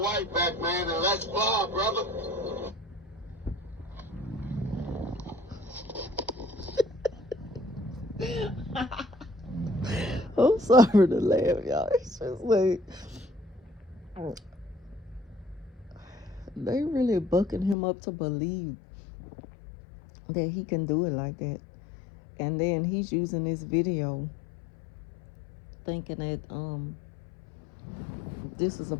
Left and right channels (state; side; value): drops out; right; at 17.8 s